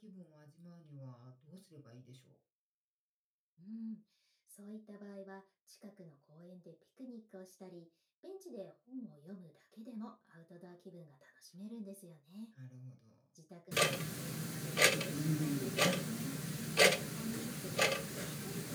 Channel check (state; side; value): identical; both; correlation 1.00